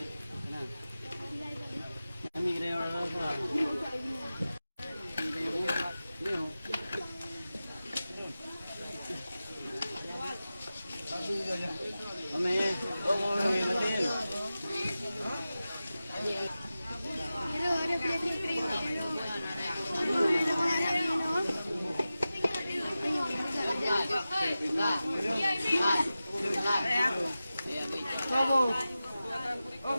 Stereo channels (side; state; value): both; inverted; correlation -0.94